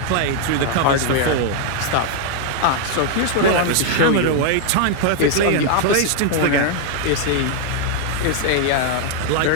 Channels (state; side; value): different; both; correlation 0.00